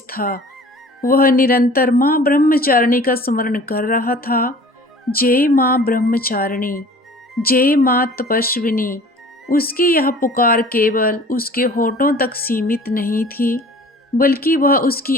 था। वह निरंतर माँ ब्रह्मचारिणी का स्मरण कर रहा था। जय माँ ब्रह्मचारिणी, जय माँ तपस्विनी। उसकी यह पुकार केवल उसके होठों तक सीमित नहीं थी, बल्कि वह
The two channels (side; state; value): both; normal; correlation 0.47